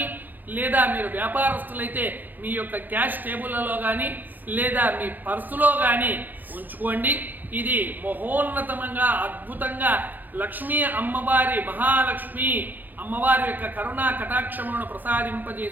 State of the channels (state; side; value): late; left; 0.086 ms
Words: లేదా మీరు వ్యాపారస్తులైతే మీ యొక్క క్యాష్ టేబుల్లలో కానీ, లేదా మీ పర్సులో కానీ ఉంచుకోండి. ఇది మహోన్నతంగా అద్భుతంగా లక్ష్మీ అమ్మవారి, మహాలక్ష్మి అమ్మవారి యొక్క కరుణా కటాక్షములను